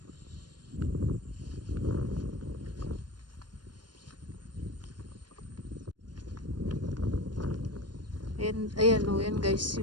Ayan yan guys,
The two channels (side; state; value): left; late; 0.70 ms